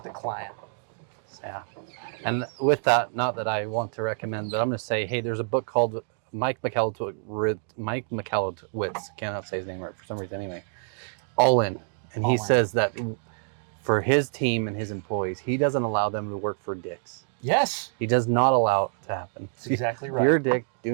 the client. Yeah. And with that, not that I want to recommend, but I'm going to say, hey, there's a book called Mike Michalowicz, cannot say his name right for some reason anyway, All In. And he says that for his team and his employees, he doesn't allow them to work for dicks. Yes. He does not allow it to happen. That's exactly right. You're a dick.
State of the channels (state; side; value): silent; left; 60 dB below the other